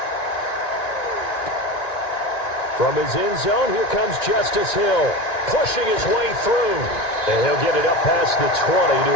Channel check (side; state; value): right; late; 1.9 ms